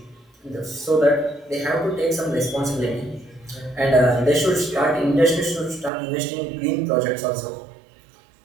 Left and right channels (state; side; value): drops out; left; at 5.9 s